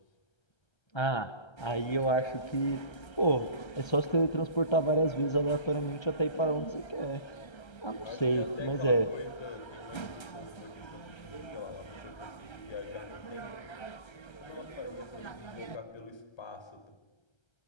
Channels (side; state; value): right; late; 1.3 ms